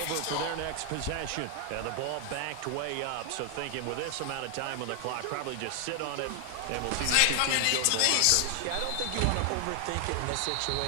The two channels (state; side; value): different; both; correlation 0.00